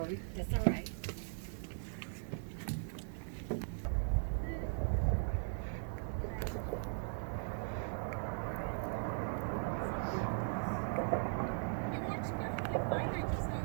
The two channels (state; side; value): silent; left; digital silence